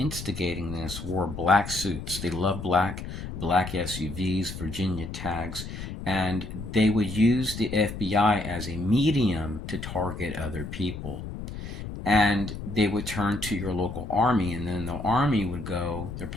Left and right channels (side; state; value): left; noise; rumble, 8 dB below the sound